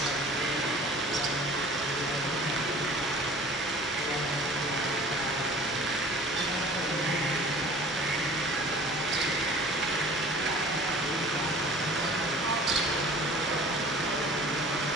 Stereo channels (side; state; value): both; normal; correlation 0.45